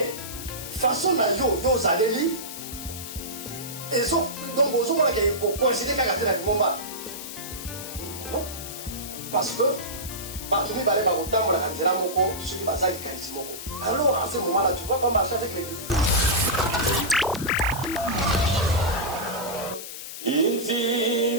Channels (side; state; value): left; noise; hiss, 10 dB below the sound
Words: façon na yo zaleli, et donc vous avez considéré qu'à la momba. Non, parce que partout les balais au tambour la canzela moko, ceux qui basent les carismoko. Alors à ce moment-là, tu vas pas marcher avec l'église.